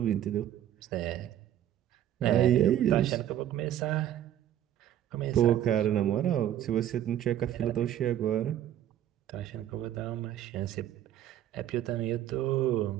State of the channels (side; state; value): left; quieter; 11.4 dB